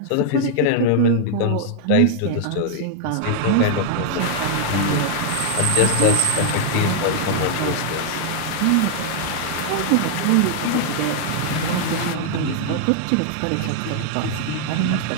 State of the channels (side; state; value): both; different; correlation 0.00